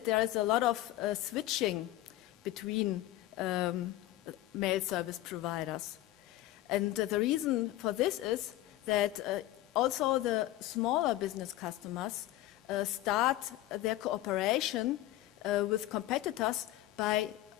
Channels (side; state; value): right; quieter; 15.6 dB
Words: there is a lot of switching between mail service providers. And the reason for this is that also the smaller business customers start their cooperation with competitors by